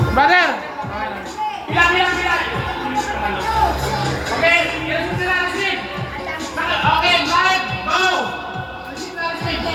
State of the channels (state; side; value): identical; both; correlation 1.00